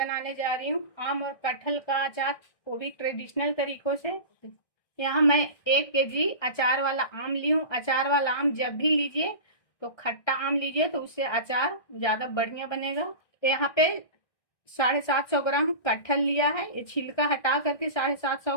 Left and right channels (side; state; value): right; late; 1.6 ms